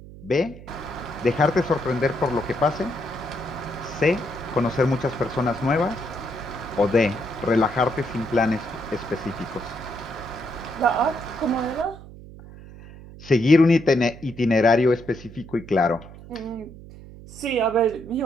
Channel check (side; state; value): right; noise; hum, 17 dB below the sound